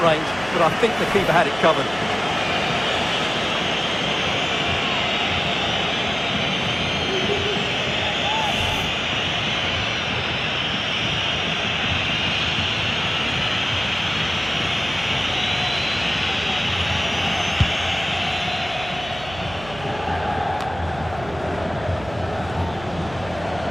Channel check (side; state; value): right; noise; hum, 16 dB below the sound